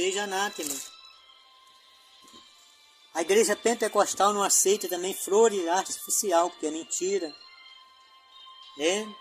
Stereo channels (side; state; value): both; identical; correlation 1.00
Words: anátema. A igreja pentecostal não aceita também flores artificial, porque é mentira. É